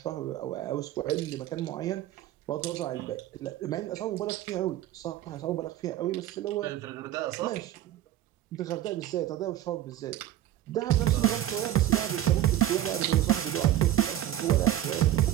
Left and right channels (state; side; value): quieter; left; 12.8 dB